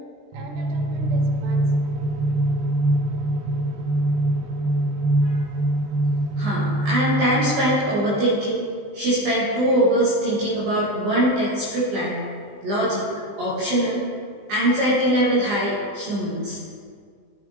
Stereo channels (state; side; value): late; left; 20 ms